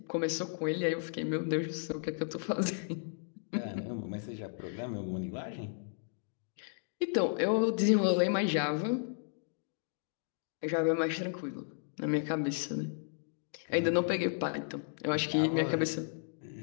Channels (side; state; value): right; silent; digital silence